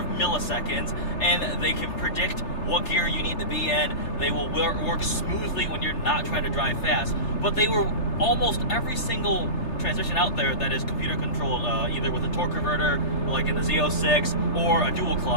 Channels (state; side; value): late; right; 3.3 ms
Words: milliseconds, and they can predict what gear you need to be in. They will work smoothly when you're not trying to drive fast. But they were almost every single transmission out there that is computer controlled, either with a torque converter, like in the Z06, or a dual